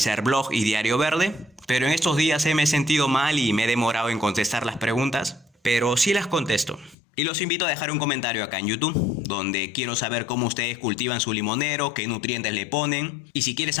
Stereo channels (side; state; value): right; drops out; at 7.0 s